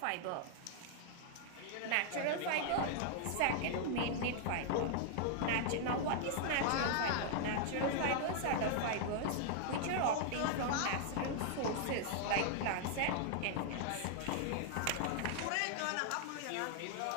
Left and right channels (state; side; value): different; both; correlation 0.00